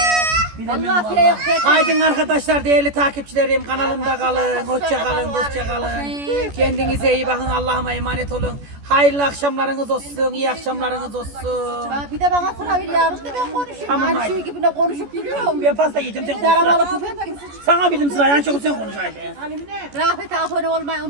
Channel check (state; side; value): late; left; 14 ms